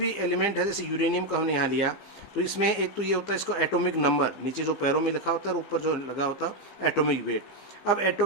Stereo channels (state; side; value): late; right; 15 ms